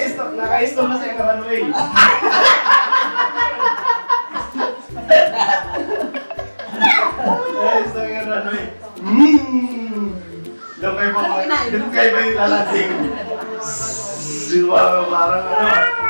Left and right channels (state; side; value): inverted; both; correlation -1.00